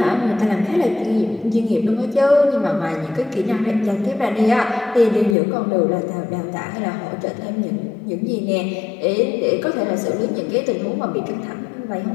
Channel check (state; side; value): drops out; right; at 5.4 s